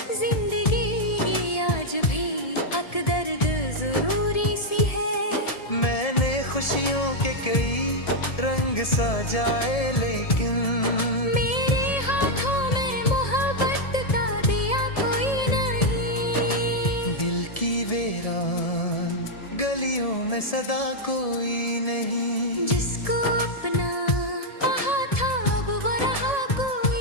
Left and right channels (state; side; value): late; right; 1.7 ms